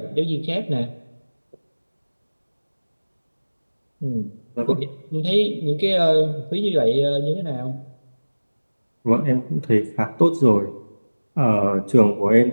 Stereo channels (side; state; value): both; inverted; correlation -1.00